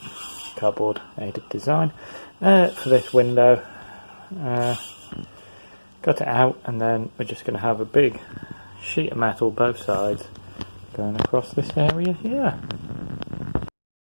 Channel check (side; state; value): both; inverted; correlation -1.00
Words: cardboard aided design, for this window. Cut it out, and then we're just going to have a big sheet of metal both sides going across this area here.